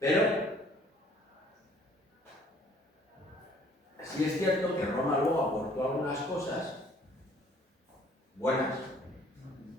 sí es cierto que Roma luego aportó algunas cosas buenas,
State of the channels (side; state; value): both; normal; correlation 0.57